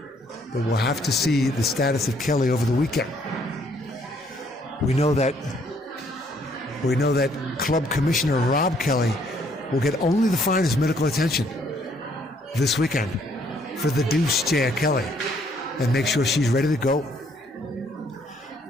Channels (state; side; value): normal; both; correlation 0.66